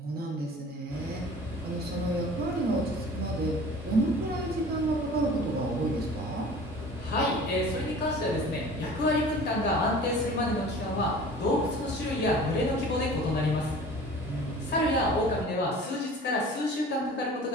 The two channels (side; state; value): both; normal; correlation 0.43